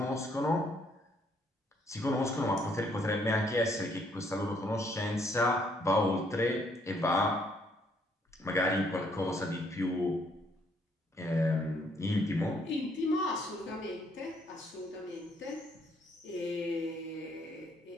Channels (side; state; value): both; normal; correlation 0.68